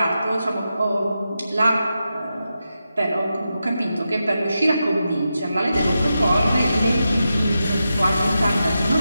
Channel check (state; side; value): inverted; both; correlation -0.89